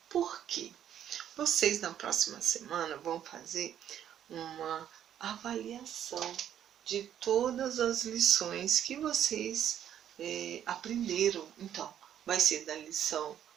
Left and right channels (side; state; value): left; quieter; 10.2 dB